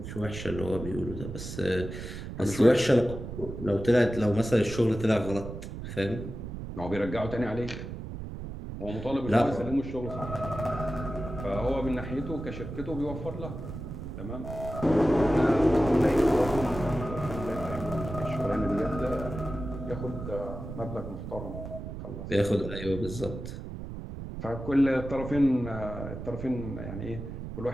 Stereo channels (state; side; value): noise; right; rumble, 8 dB below the sound